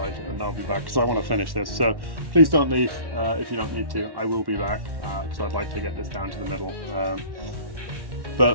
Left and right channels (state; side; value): late; left; 1.1 ms